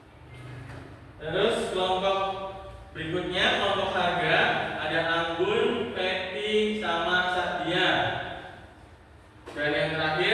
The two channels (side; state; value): both; identical; correlation 1.00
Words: Terus kelompok berikutnya kelompok harga ada Anggun, Peti, sama Sadia. Dan yang